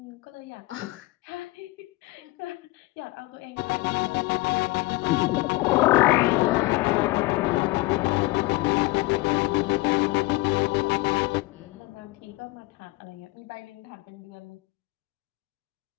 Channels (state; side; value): quieter; right; 20.9 dB